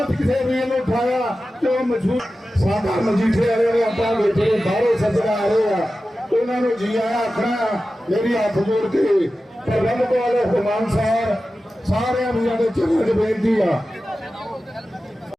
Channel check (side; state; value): both; normal; correlation 0.94